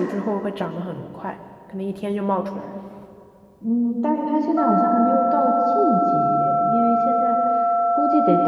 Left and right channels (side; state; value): both; identical; correlation 1.00